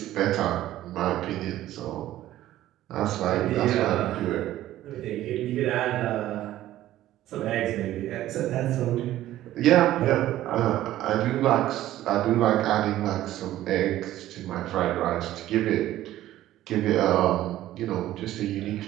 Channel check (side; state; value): left; quieter; 14.0 dB